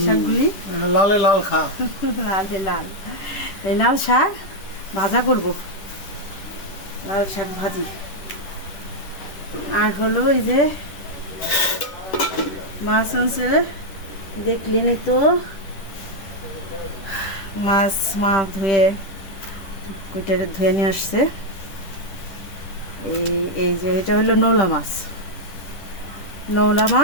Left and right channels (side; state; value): right; late; 10 ms